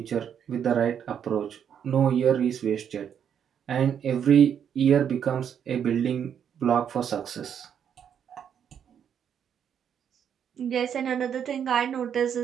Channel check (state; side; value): quieter; left; 8.4 dB